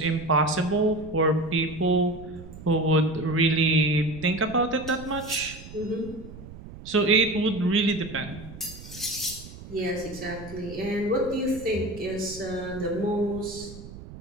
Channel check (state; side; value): noise; right; rumble, 15 dB below the sound